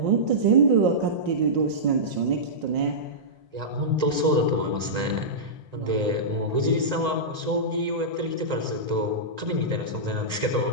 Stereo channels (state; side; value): late; left; 1.9 ms